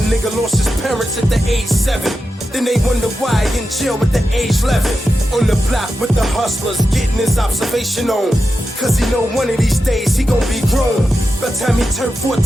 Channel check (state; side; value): normal; both; correlation 0.90